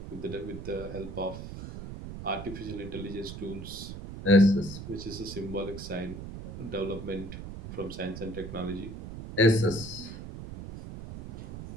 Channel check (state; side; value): noise; right; rumble, 10 dB below the sound